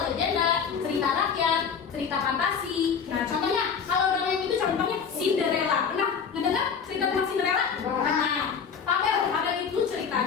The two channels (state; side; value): quieter; right; 6.5 dB